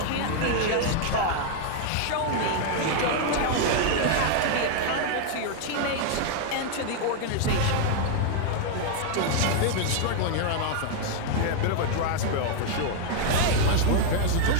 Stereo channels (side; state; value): both; different; correlation 0.00